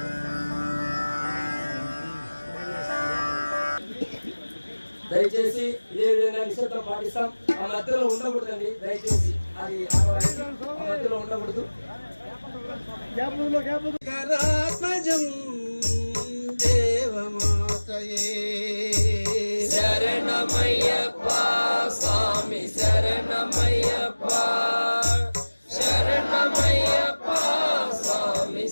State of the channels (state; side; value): inverted; both; correlation -1.00